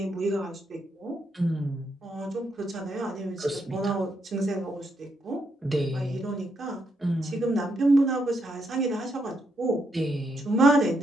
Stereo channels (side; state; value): both; normal; correlation 0.78